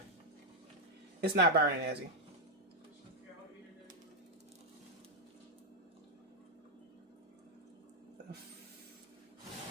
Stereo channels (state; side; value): normal; both; correlation -0.02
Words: It's not burning, Ezzy.